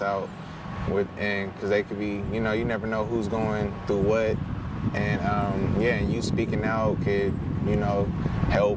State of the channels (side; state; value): both; identical; correlation 1.00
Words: out and because they could be, you know, you never know who's going through what. And yeah, and you speaking out could, you know,